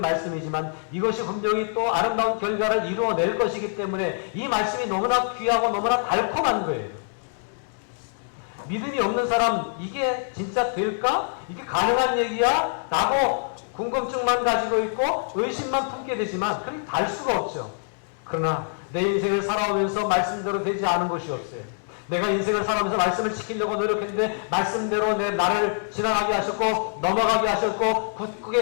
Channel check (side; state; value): right; silent; digital silence